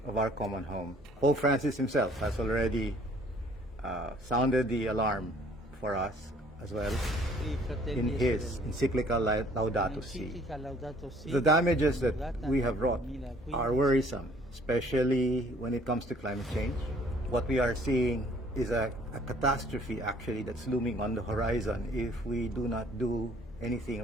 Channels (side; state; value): both; normal; correlation 0.58